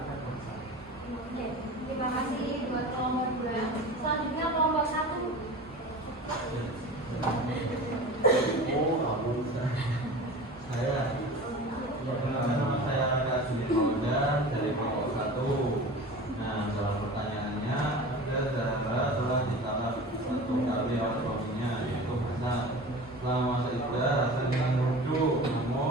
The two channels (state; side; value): normal; both; correlation 0.35